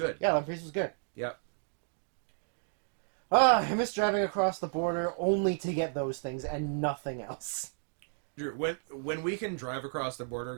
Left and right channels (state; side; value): silent; left; digital silence